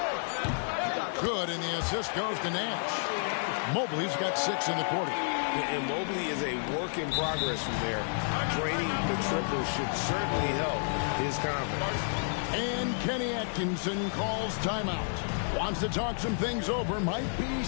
Good, and the assist goes to Nash. Mobley's got 6 in the quarter. And Mobley is a work in progress from there. Draining the triple should certainly help his confidence. And Kenny Atkinson calls timeout. Wants to talk some things over. Might be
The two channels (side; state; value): right; silent; digital silence